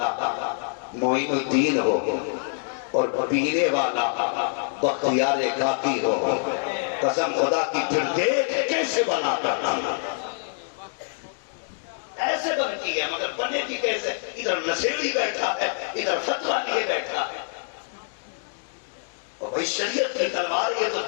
معین الدین ہو اور پینے والا بختیار کافی ہو، قسم خدا کی، پھر دیکھ کیسے بنا کرتا ایسے بنتی ہے، مگر بنے کی کیسے؟ ادھر نشیڑی بیٹھا ہے، ادھر فتویٰ لیے بیٹھا ہے، اور بھائی شریعت کی تلوار یہ تو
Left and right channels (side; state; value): right; silent; 61 dB below the other